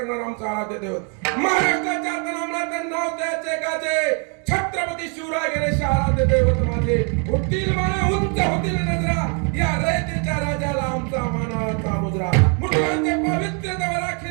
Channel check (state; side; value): quieter; left; 38.1 dB